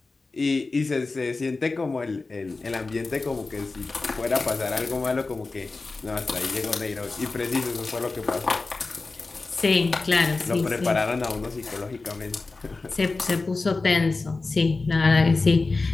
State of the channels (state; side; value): quieter; right; 3.7 dB